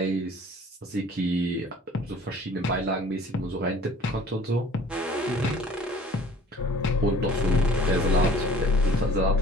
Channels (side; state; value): both; normal; correlation 0.50